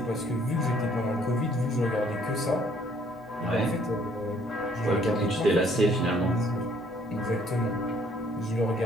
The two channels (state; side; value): normal; both; correlation 0.63